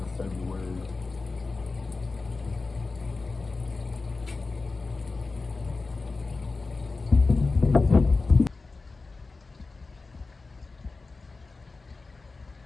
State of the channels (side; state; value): right; quieter; 3.8 dB